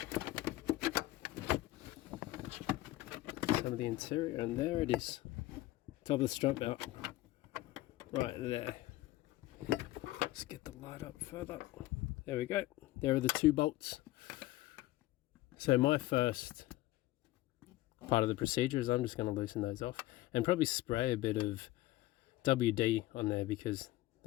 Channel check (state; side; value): quieter; right; 17.1 dB